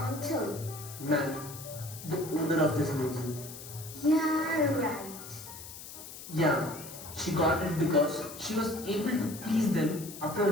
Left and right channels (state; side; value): noise; left; hiss, 13 dB below the sound